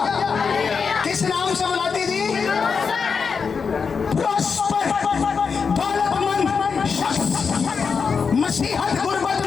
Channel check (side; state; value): right; quieter; 5.6 dB